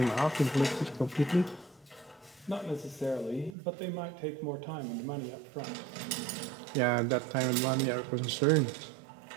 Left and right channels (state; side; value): drops out; left; at 3.6 s